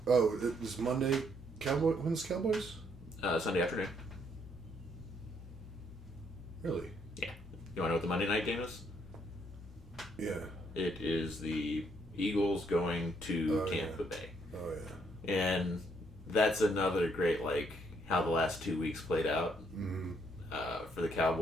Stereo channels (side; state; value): both; normal; correlation 0.71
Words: Oh, it was Monday. When's Cowboys? Sunday afternoon. Really? Yeah. You want to know what the Monday night game is? Yeah. It is the Eagles going to Tampa yeah. Bay. Oh, yeah. And that's another great, like, how the last 2 weeks played out. Mm-hmm. For the